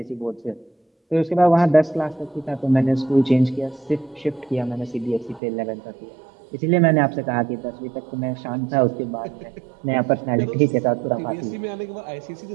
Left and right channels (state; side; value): drops out; left; at 5.4 s